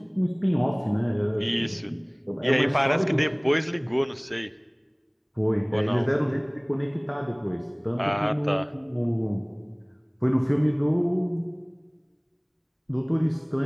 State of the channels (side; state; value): both; identical; correlation 1.00